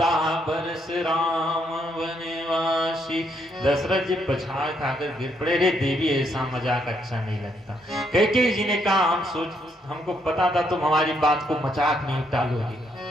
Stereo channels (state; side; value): normal; both; correlation 0.74